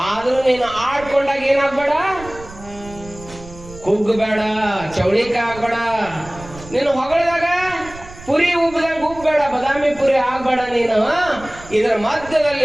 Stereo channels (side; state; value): right; noise; rumble, 18 dB below the sound